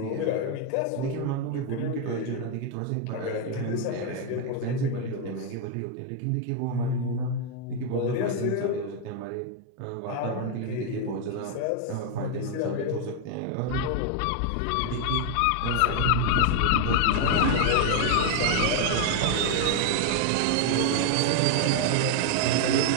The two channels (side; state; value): both; different; correlation 0.01